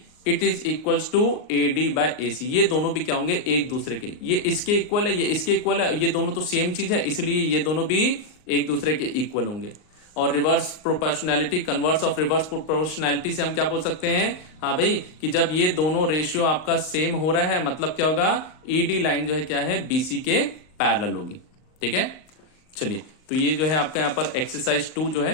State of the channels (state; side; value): late; right; 38 ms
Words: it is equals to AD by AC। ये दोनों भी क्या होंगे, एक दूसरे के, ये इसके इक्वल है, ये इसके इक्वल है, ये दोनों तो सेम चीज है, इसलिए ये दोनों भी एक दूसरे के इक्वल होंगे। और reverse proportionality, converse of reverse proportionality से हम क्या बोल सकते हैं, हाँ भाई, कि जब ये दोनों रेशियो आपका सेम हो रहा है, मतलब क्या होगा, ED लाइन जो है क्या है, BC के पैरेलल होगी। ठीक है, चलिए, तो ये जो है आपका यहाँ पर एक्सरसाइज 2 जो